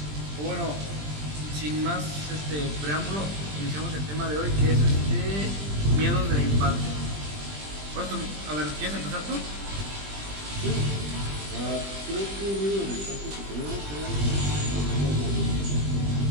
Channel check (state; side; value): late; left; 20 ms